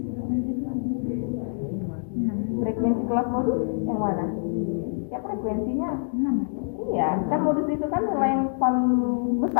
Frekuensi kelas modus yang mana? Ya frekuensinya 6. Iya, kan modus itu kan nilai yang paling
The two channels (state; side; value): silent; right; digital silence